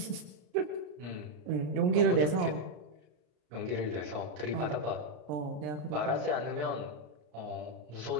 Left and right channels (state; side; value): late; left; 33 ms